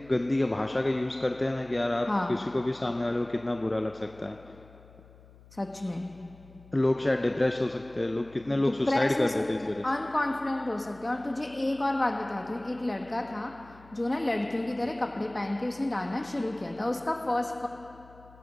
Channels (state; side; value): noise; left; hum, 23 dB below the sound